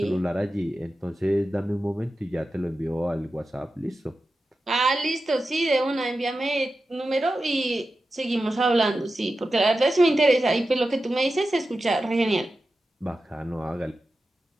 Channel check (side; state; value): both; normal; correlation 0.92